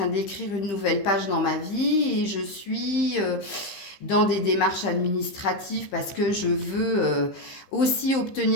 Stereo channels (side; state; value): right; late; 15 ms